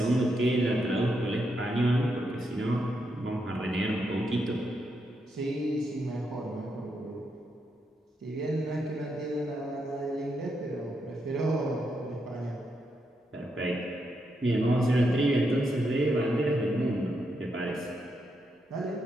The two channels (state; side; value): normal; both; correlation 0.82